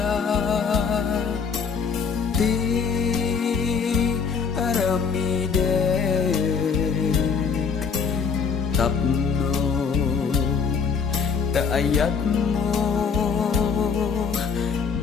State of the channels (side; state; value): right; quieter; 5.9 dB